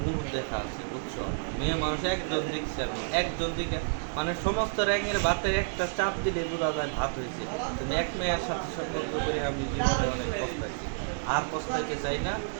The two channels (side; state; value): left; silent; 58 dB below the other